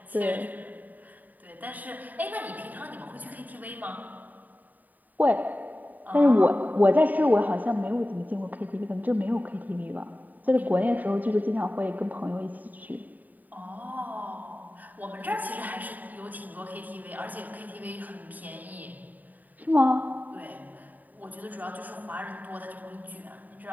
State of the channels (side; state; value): left; late; 0.083 ms